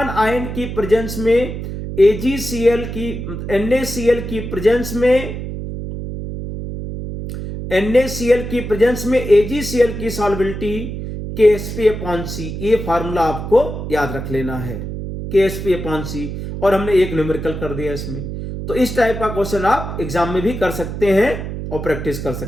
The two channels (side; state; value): right; noise; hum, 6 dB below the sound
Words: आयन की प्रेजेंस में AgCl की NaCl की प्रेजेंस में AgCl की सॉल्युबिलिटी Ksp अपॉन C, ये फार्मूला आपको याद रख लेना है, Ksp अपॉन C। और हमने एक न्यूमेरिकल कर दिया इसमें। तो इस टाइप का क्वेश्चन आप एग्जाम में भी कर सकते हैं और प्रैक्टिस कर